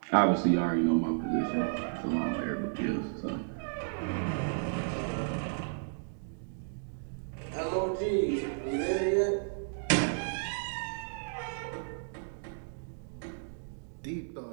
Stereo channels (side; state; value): left; silent; digital silence